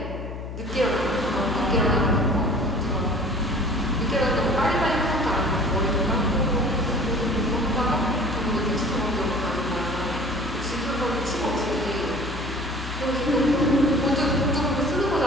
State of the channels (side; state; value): left; noise; hum, 8 dB below the sound